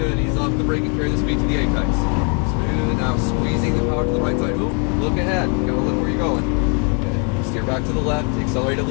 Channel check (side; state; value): right; quieter; 37.6 dB